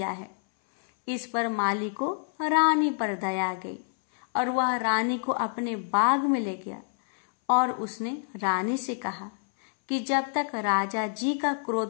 है। इस पर माली को रानी पर दया आ गई और वह रानी को अपने बाग में ले गया और उसने रानी से कहा कि जब तक राजा जी का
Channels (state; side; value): silent; right; 60 dB below the other